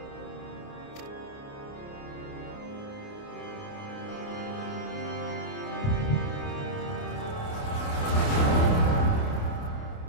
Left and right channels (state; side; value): late; right; 28 ms